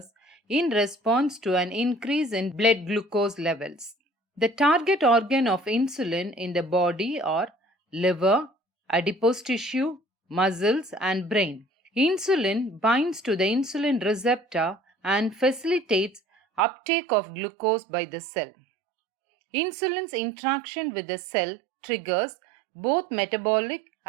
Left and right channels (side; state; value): left; drops out; at 16.6 s